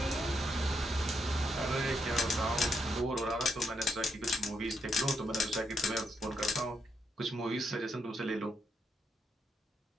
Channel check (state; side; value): normal; both; correlation 0.78